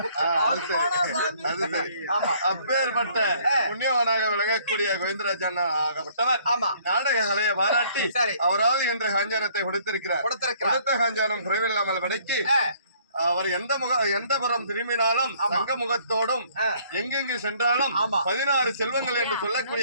அப்பேற்பட்ட புண்ணியவனாக விளங்கக்கூடிய கோவிந்தராஜ் அண்ணா ஆகப்பட்டவர் நாடக கலையை பாராட்டி அவரால் என்ற காஞ்சானத்தை கொடுத்திருக்கிறார். கொடுத்த காஞ்சானம் குறைவில்லாமல் விடைக்கு அவர் எந்த புறம் திரும்பினாலும் தங்க முகத்தோடும் எங்கெங்கு சென்றாலும் 16 செல்வங்கள் என்று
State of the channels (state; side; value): inverted; both; correlation -0.60